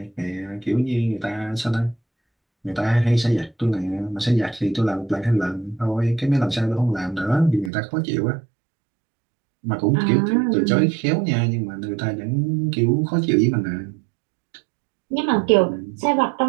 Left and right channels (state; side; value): drops out; left; at 7.7 s